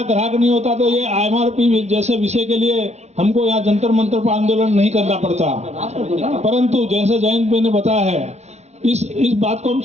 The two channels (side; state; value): left; late; 0.32 ms